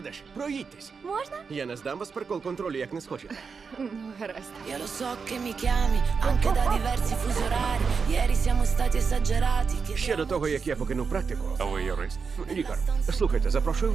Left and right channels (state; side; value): quieter; left; 5.4 dB